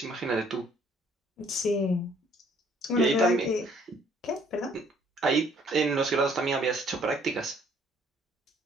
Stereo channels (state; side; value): normal; both; correlation 0.62